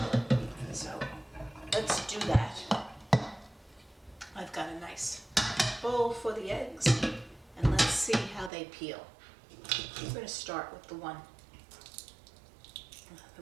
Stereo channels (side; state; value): left; drops out; at 8.5 s